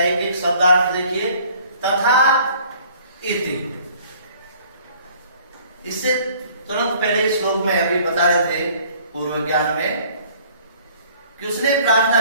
एक एक शब्दार्थ देखिए। तथा इति, इससे तुरंत पहले श्लोक में अभी बता रहे थे पूर्व ज्ञान में कि उसने प्रार्थना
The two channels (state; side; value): inverted; both; correlation -0.55